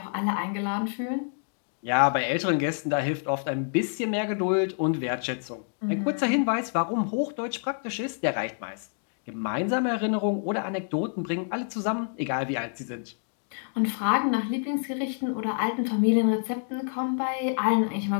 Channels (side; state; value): right; silent; digital silence